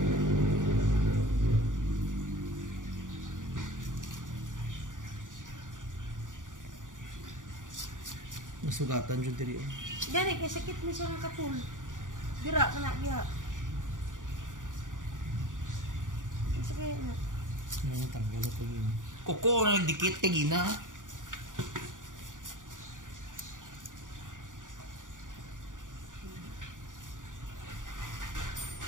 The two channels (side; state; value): left; late; 0.88 ms